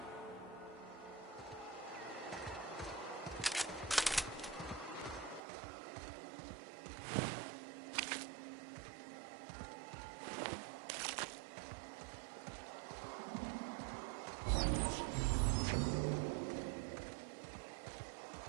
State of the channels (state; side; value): drops out; left; at 5.4 s